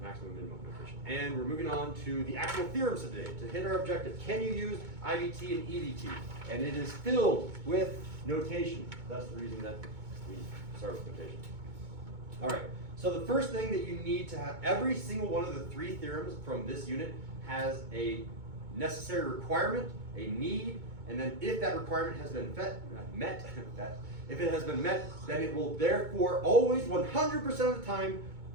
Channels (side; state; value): left; late; 2.2 ms